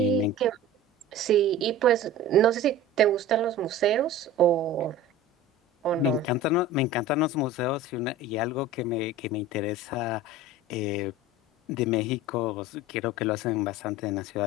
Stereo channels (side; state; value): both; normal; correlation 0.37